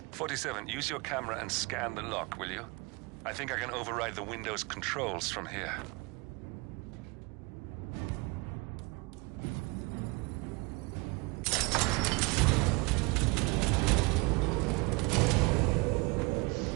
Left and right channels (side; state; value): left; quieter; 27.3 dB